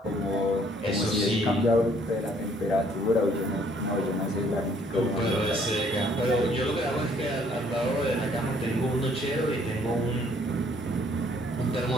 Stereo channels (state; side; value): normal; both; correlation 0.63